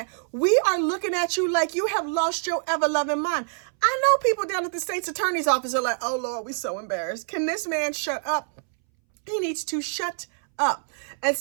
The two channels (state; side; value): silent; left; 61 dB below the other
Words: We are looking at you like you have lost your ever-loving mind. I know people down at the state's attorney's office are like, oh, Lord, we're so embarrassed. Can this man shut up? He needs to shut up. And